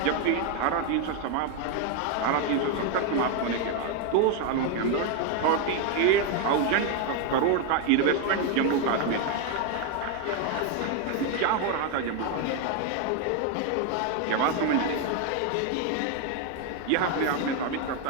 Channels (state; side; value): different; both; correlation 0.01